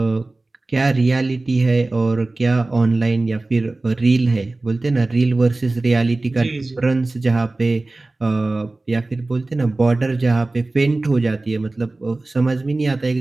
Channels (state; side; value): quieter; left; 3.1 dB